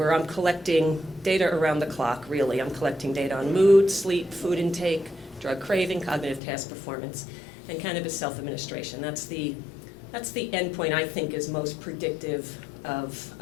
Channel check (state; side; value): drops out; right; at 6.4 s